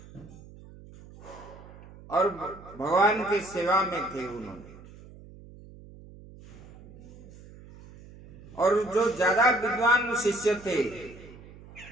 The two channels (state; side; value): noise; right; hum, 19 dB below the sound